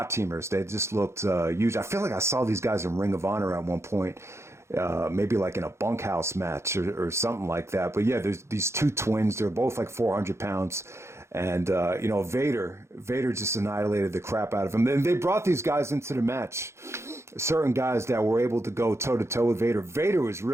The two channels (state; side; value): late; left; 0.13 ms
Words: teamers. They just looked huge. I feel like I saw these guys in Ring of Honor at one point, maybe like in a bunkhouse match or something like that. But yeah, there's these two twins. They're both like 400 pounds. And, Vader just annihilated the crap out of him. Then they brought these guys into the match, certain guys that were able to go toe-to-toe with Vader. Vader was